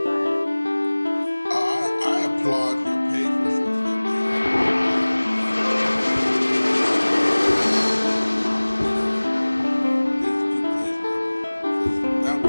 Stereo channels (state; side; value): inverted; both; correlation -1.00